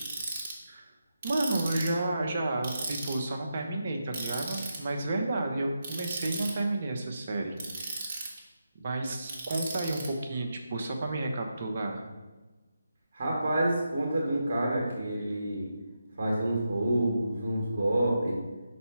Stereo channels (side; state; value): both; inverted; correlation -0.86